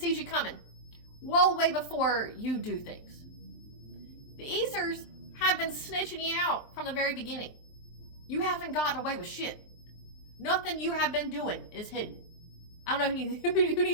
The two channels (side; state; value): right; late; 23 ms